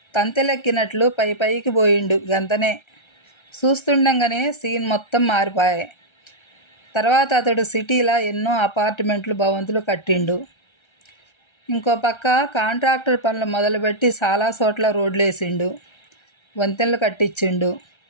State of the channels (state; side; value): late; right; 1.3 ms